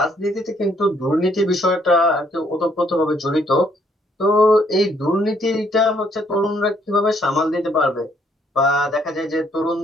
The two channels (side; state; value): both; normal; correlation 0.68